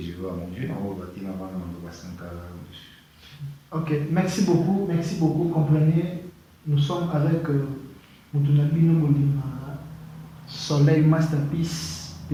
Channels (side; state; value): both; identical; correlation 1.00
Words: je veux à mon Dieu, on va bâtir avant de Sankara. Ok, merci beaucoup. Comprenez, nous sommes avec Moutounabino Molima, Soleil Masterpiece,